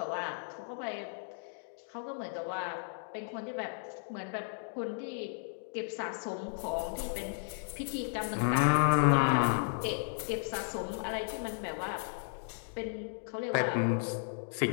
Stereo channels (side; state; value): right; silent; digital silence